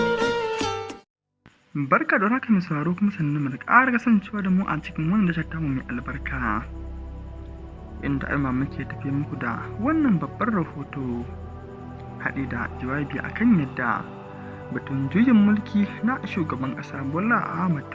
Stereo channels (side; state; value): both; identical; correlation 1.00